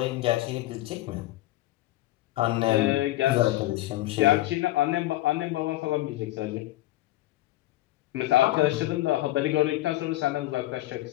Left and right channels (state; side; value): quieter; right; 16.6 dB